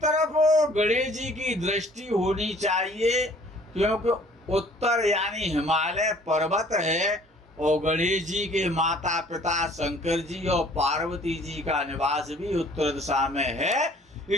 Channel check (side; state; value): both; normal; correlation 0.54